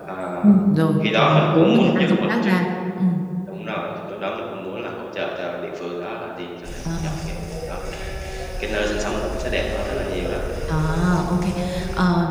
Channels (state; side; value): identical; both; correlation 1.00